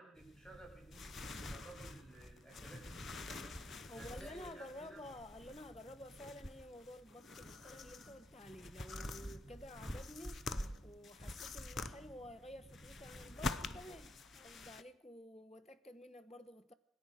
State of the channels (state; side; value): normal; both; correlation 0.78